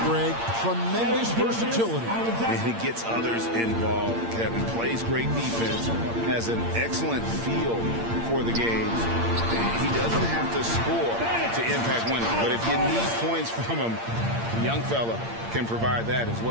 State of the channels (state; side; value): late; left; 8.7 ms